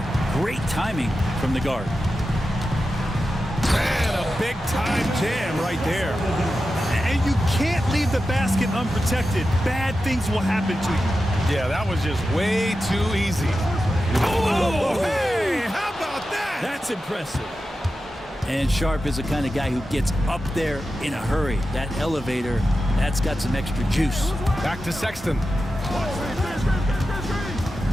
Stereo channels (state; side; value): normal; both; correlation 0.92